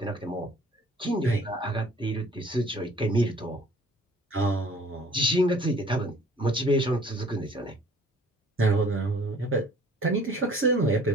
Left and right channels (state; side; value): normal; both; correlation 0.53